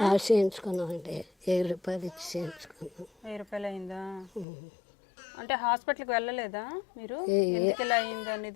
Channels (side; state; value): right; drops out; at 4.5 s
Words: చేయించుకున్నామండి. 1000 రూపాయలు ఇచ్చి చేయించుకున్నాం. 1000 రూపాయలు అయిందా? అంటే హాస్పిటల్కి వెళ్ళలేదా మీరు? ఎందుకు ఇలా అయింది